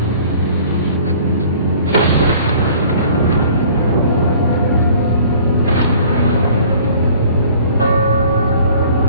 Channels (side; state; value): both; inverted; correlation -0.51